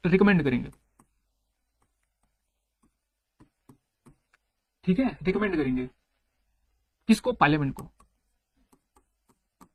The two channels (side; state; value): both; identical; correlation 1.00